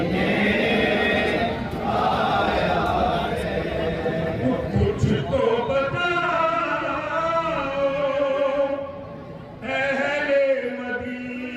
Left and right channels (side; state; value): both; identical; correlation 1.00